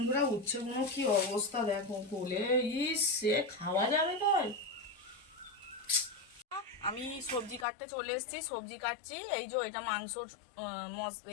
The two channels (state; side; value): drops out; right; at 7.7 s